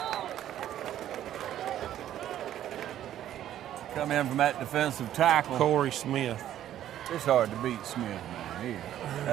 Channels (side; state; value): left; quieter; 11.7 dB